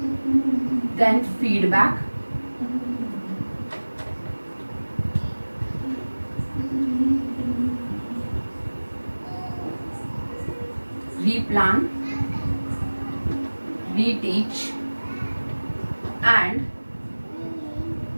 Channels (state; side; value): inverted; both; correlation -1.00